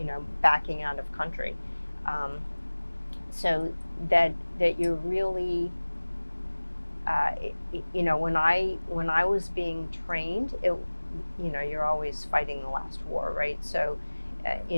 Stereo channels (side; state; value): both; inverted; correlation -1.00